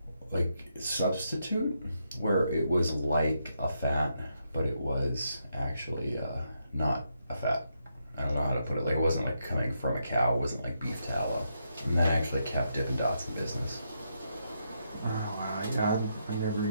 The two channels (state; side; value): inverted; both; correlation -0.80